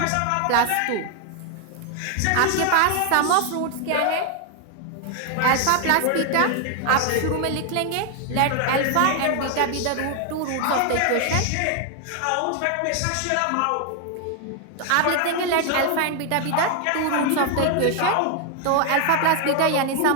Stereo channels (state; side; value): different; both; correlation 0.00